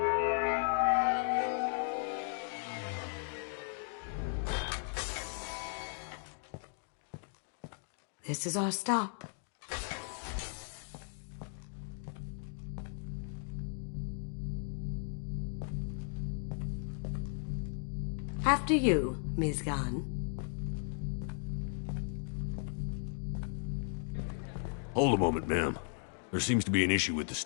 This is our stop. After you, Ms. Gunn. Hold a moment, ma'am. There seems to be an issue with the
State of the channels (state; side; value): silent; right; 54 dB below the other